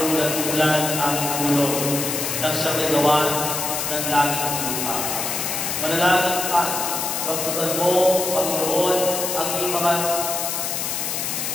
ang ulan-ulan ng aming tulong nang siyang nagawa ng langit at lupa. Manalangin ka, basbasan mo, Panginoon, ang iyong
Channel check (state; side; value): noise; left; hiss, 2 dB below the sound